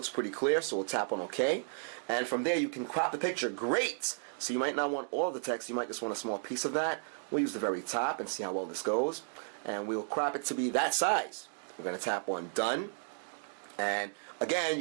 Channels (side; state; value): left; silent; digital silence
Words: pretty clear, so we'll tap on OK. And from there, you can crop the picture. Great! So you might not want all of the text. You might just want a small piece of that. We'll use the very top and see how well this goes. And we'll crop it to be that size. We're going to tap on Done. And again,